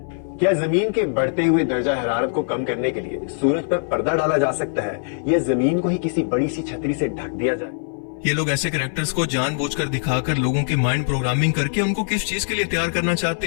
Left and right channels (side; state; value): right; silent; 59 dB below the other